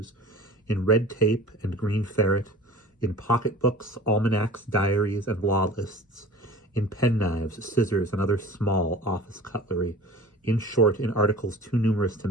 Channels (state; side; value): normal; both; correlation 0.41